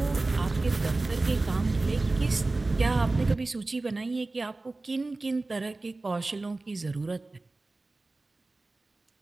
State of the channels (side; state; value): left; quieter; 3.2 dB